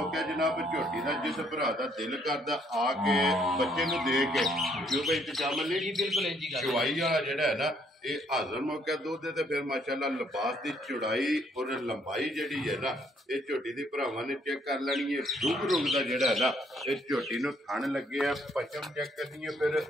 ਜਨਾਬ ਝੋਟੀ ਦਾ ਜਿਸ ਭਰਾ ਦਾ ਦਿਲ ਕਰਦਾ ਆ ਕੇ ਬੱਚੇ ਨੂੰ ਦੇ ਕੇ ਜੋ ਭਾਈ ਸ਼ਾਮ ਅਲੀ ਜੀ ਬਿਲਕੁਲ ਇੰਜੀ ਗੱਲ ਚਵਾਈ ਵਾਲਾ ਜਿਹੜਾ ਹੈ ਨਾ ਇਹ ਹਾਜ਼ਰ ਮੌਕਾ ਦੁੱਧ ਤੇ ਫਿਰ ਮਾਸ਼ਾਅੱਲਾ ਲਿਬਾਸ ਦੀ ਚੌੜਾਈ ਔਰ ਲੰਬਾਈ ਜਿਹੜੀ ਹੈ ਨਾ ਇਹ ਝੋਟੀ ਦੀ ਭਰਾਵਾਂ ਨੇ ਚੈੱਕ ਕਰ ਲੈਣੀ ਹੈ ਰੁਗ ਦਾ ਜਿਹੜਾ ਹੈ ਨਾ ਇਹ ਝੋਟੀ ਨੂੰ ਥਣ ਲੱਗੇ ਆ ਪਚਮ ਚੈੱਕ ਕਰਨੀ ਹੈ ਫਿਰ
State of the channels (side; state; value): both; normal; correlation 0.67